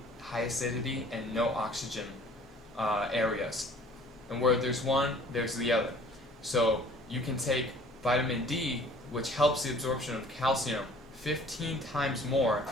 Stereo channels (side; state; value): both; normal; correlation 0.52